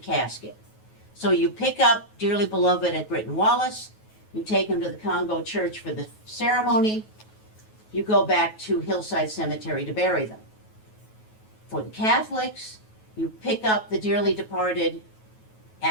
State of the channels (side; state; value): right; late; 9.3 ms